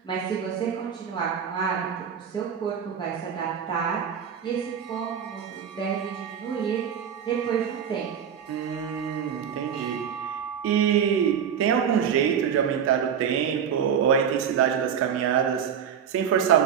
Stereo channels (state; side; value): quieter; left; 8.0 dB